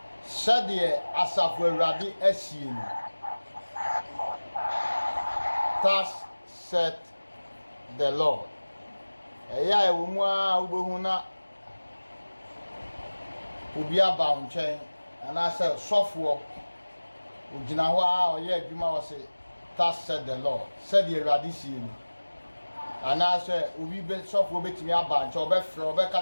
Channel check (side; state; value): both; inverted; correlation -1.00